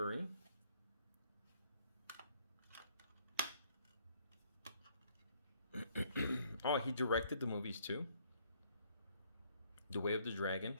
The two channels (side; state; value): both; inverted; correlation -0.65